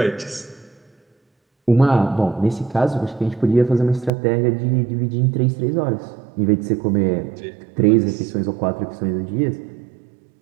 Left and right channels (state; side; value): drops out; left; at 4.1 s